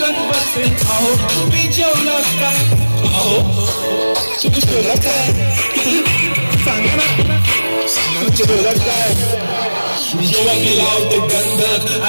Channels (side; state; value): both; inverted; correlation -1.00